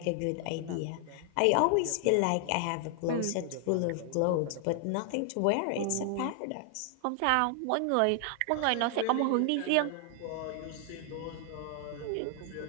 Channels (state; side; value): different; both; correlation 0.00